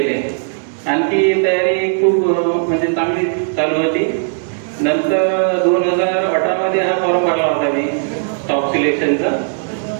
आणखी तयारी खूप म्हणजे चांगली चालू होती. नंतर 2018 मध्ये हा फॉर्म भरला होता मी स्टॉप सिलेक्शनचा.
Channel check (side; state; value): left; silent; digital silence